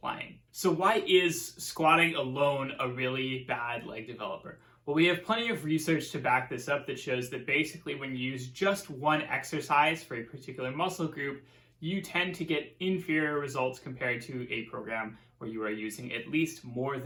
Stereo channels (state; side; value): identical; both; correlation 1.00